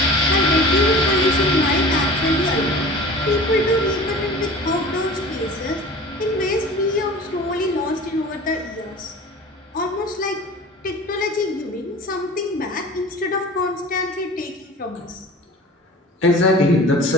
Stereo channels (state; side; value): normal; both; correlation 0.40